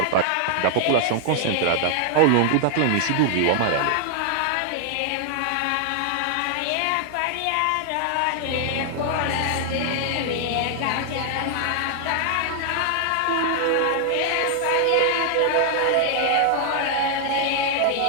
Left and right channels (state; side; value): different; both; correlation 0.00